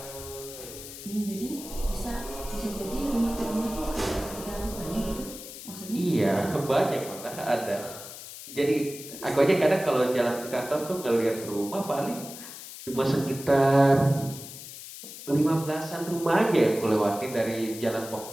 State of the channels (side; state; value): left; noise; hiss, 13 dB below the sound